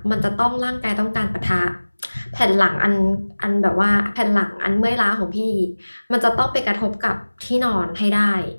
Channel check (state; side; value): inverted; both; correlation -1.00